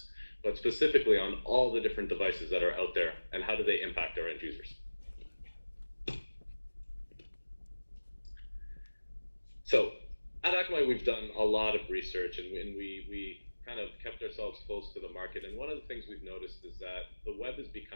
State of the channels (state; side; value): inverted; both; correlation -1.00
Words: but specifically on all the different devices that are out there, and how do they impact our end users. So at Akamai, we've done a lot of research, and we kind of kept ourselves close to the market. And one of the things we've noticed is that the web is